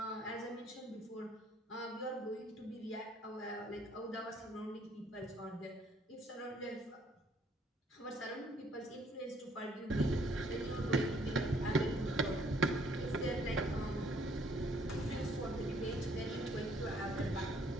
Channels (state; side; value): normal; both; correlation 0.64